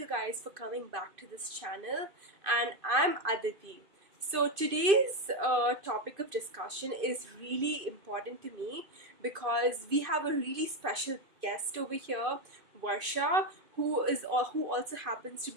guys for coming back to this channel, and I'm Aditi. So today's topic of discussion is really important to me because we have a really special guest over here, Varsha, who also happens to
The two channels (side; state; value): left; late; 2.5 ms